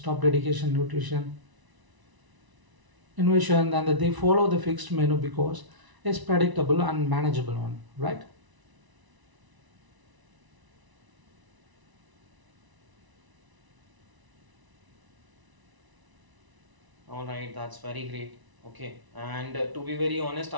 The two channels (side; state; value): left; late; 1.0 ms